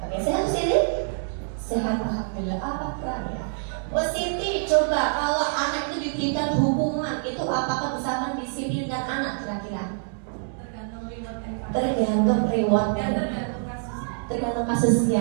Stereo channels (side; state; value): left; silent; digital silence